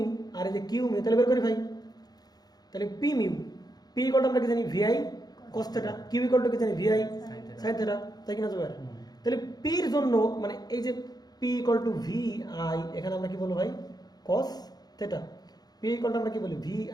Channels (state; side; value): late; right; 0.19 ms